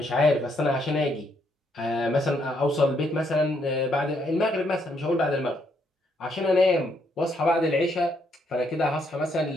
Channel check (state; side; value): normal; both; correlation 0.73